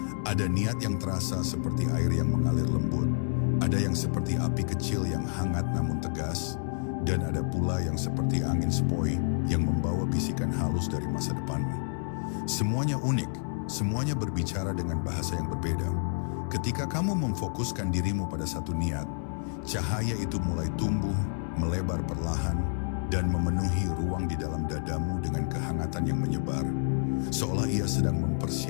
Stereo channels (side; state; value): right; silent; 58 dB below the other